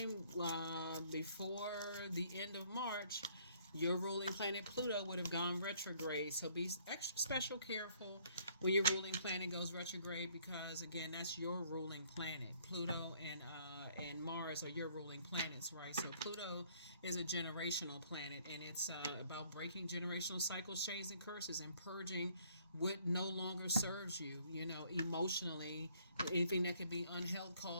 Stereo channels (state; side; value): inverted; both; correlation -0.63